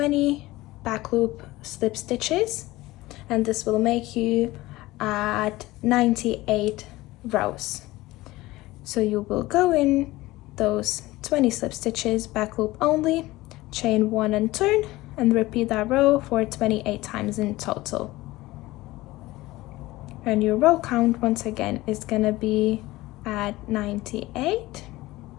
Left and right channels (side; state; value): right; quieter; 18.7 dB